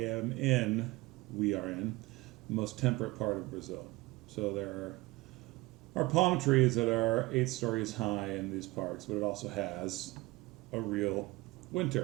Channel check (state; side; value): quieter; left; 21.9 dB